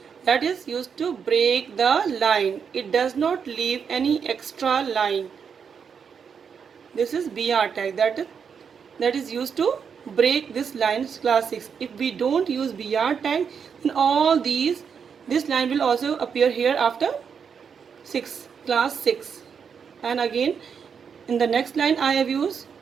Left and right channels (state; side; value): quieter; left; 6.7 dB